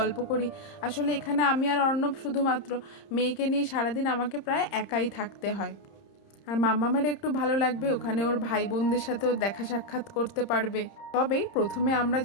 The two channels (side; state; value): right; late; 30 ms